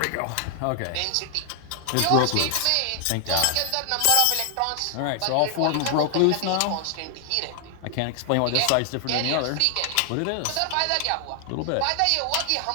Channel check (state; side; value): different; both; correlation 0.00